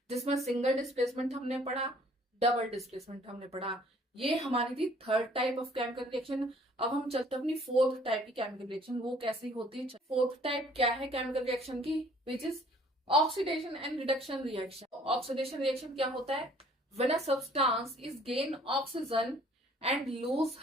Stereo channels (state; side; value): normal; both; correlation 0.57